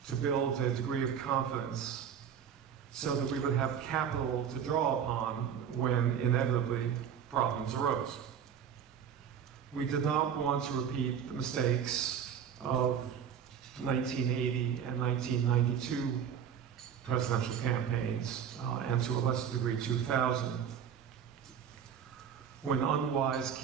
to build a degree of confidence so that we would have capital to draw upon when inevitably problems arose. We did not want to repeat the mistakes of 1980 and 1992 presidential campaigns, and to a lesser degree 2000, when unwise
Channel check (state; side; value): quieter; left; 8.2 dB